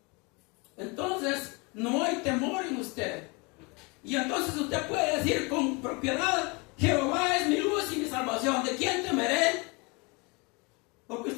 Entonces, no hay temor en usted. Y entonces usted puede decir con propiedad, Jehová es mi luz y mi salvación. ¿De quién temeré? Porque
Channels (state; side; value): quieter; right; 28.9 dB